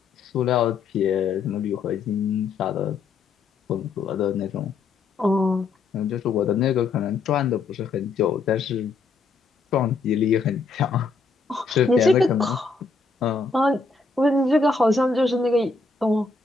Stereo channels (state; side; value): quieter; right; 4.3 dB